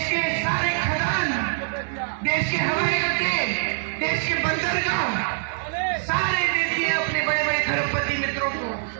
के सारे खदान, देश के हवाई अड्डे, देश के बंदरगाह सारे दे दिए अपने बड़े बड़े खरबपति मित्रों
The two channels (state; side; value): silent; left; digital silence